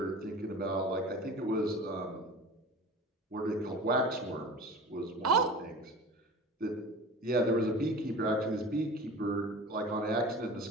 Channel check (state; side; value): normal; both; correlation 0.37